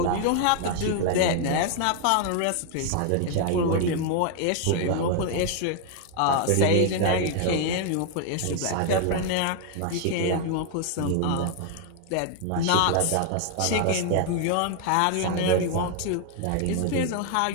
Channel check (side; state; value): both; different; correlation 0.00